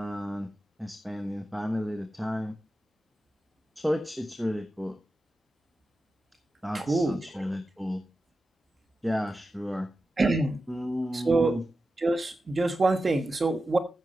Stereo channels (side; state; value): both; normal; correlation 0.92